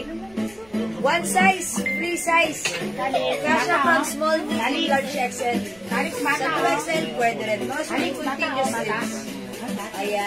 One size, free size. Kasha from small, medium, large XL. Sa 2XL, pwede rin. Mga suki, continuous strips.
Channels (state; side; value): noise; left; rumble, 29 dB below the sound